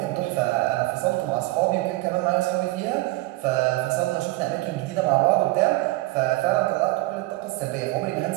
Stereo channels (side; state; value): left; quieter; 19.6 dB